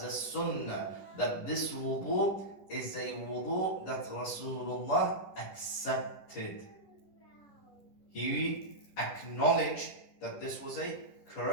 a sunnah, that this wudu is a wudu that Rasulullah accepted. He acknowledged that this was a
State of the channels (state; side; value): late; right; 10 ms